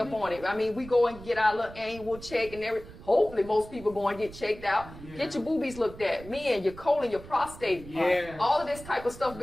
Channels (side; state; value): right; noise; rumble, 16 dB below the sound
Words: on it. We go and get our little annual check and everything. Hopefully, most people go and get checked out. Yeah. Get your boobies looked at. Men, your colon, your prostate. All of this type of stuff,